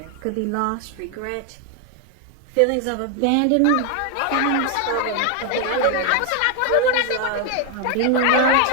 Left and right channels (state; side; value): different; both; correlation 0.01